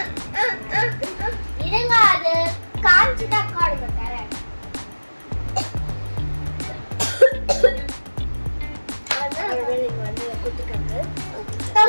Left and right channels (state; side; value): inverted; both; correlation -1.00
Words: இருங்க, அது காஞ்சிட்டா காடுங்க தரேன். அதான் இங்க வந்து குட்டிக்காங்க.